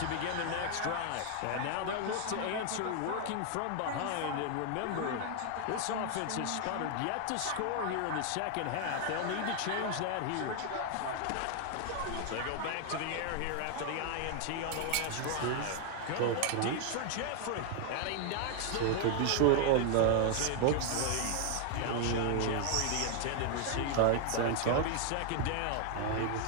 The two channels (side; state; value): both; different; correlation 0.00